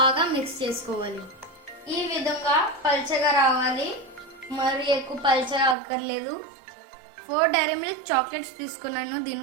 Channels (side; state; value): left; drops out; at 5.8 s